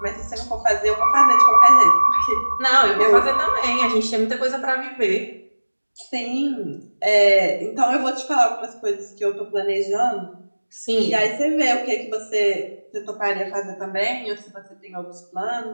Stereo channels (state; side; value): inverted; both; correlation -1.00